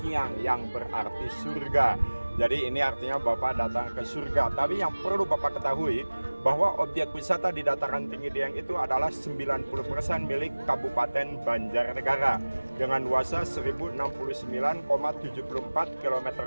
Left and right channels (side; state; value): both; inverted; correlation -1.00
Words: yang berarti surga. Jadi ini artinya Bapak datang ke surga. Tapi yang perlu Bapak ketahui bahwa objek wisata di dataran tinggi Dieng itu adalah 90% milik Kabupaten Banjarnegara dengan luasnya 1069,74